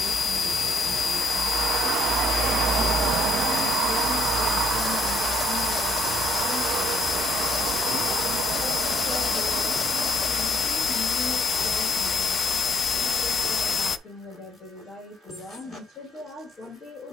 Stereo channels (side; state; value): both; normal; correlation 0.69